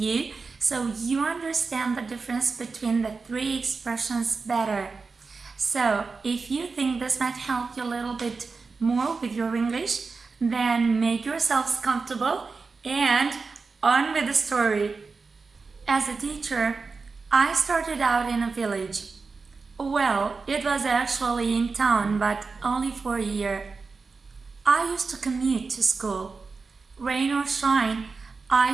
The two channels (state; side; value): quieter; left; 4.5 dB